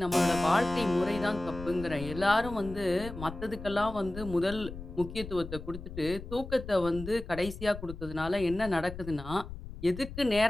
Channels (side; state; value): left; noise; rumble, 11 dB below the sound